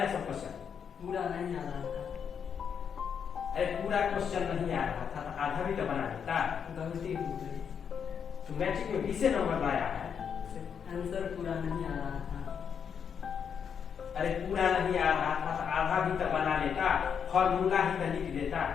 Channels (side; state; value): right; quieter; 7.3 dB